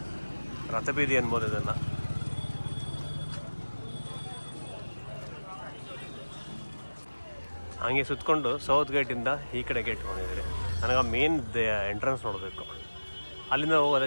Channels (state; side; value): inverted; both; correlation -1.00